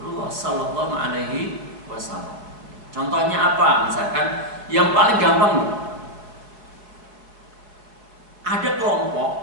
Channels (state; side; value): late; left; 4.6 ms